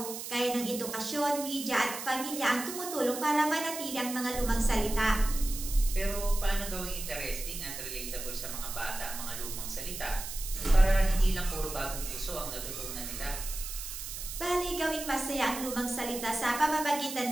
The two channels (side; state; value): right; noise; hiss, 8 dB below the sound